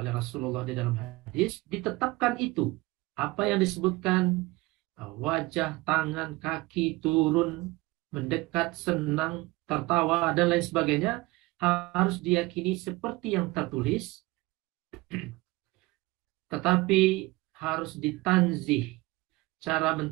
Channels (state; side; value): quieter; left; 21.9 dB